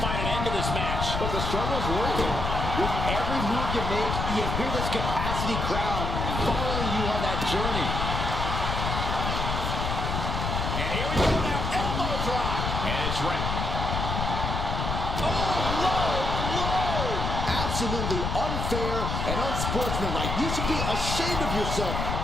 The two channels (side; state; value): left; noise; rumble, 2 dB below the sound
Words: find an end to this match. But the struggle's working. With every move you make, you hear this capacity crowd following you on that journey. And here we go now. Elbow drop. And it's right. Oh, low blow! Absolutely unfair and unsportsmanlike. You should be ashamed of yourself.